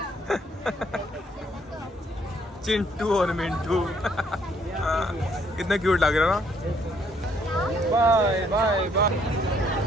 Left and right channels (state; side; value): normal; both; correlation 0.67